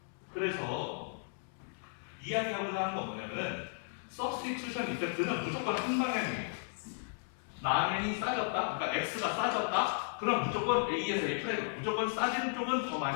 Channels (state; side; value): silent; right; digital silence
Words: 그래서 이야기하고자 하는 건 뭐냐면은 서브스티튜션 이펙트는 무조건 한 방향이에요. 라면이 싸졌다, 그러니까 X가 싸졌다, 그럼 무조건 A에서 A 프라임, 무조건 싸지는 쪽은 더